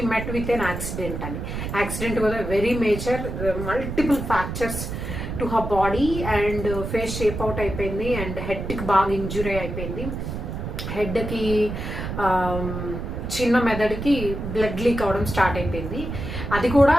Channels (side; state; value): right; noise; rumble, 6 dB below the sound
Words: met with an accident అని. Accident was a very major, multiple fractures to her body and face shape out అయిపోయింది, అండ్ హెడ్కి బాగా ఇంజురీ అయిపోయింది. హెడ్కి చిన్న మెదడుకి బ్లడ్ లీక్ అవడం స్టార్ట్ అయిపోయింది. అది కూడా